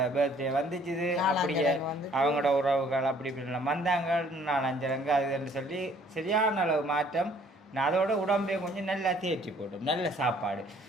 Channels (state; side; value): normal; both; correlation 0.59